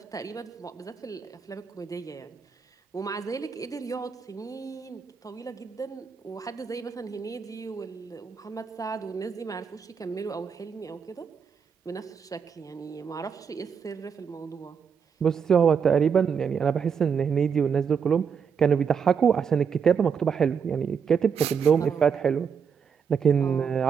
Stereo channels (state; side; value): quieter; left; 6.7 dB